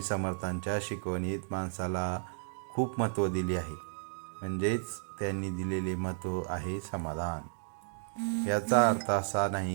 समर्थांच्या शिकवणीत माणसाला खूप महत्त्व दिले आहे. म्हणजेच त्यांनी दिलेले महत्त्व आहे समाधान. याचा अर्थ असा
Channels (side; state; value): left; silent; digital silence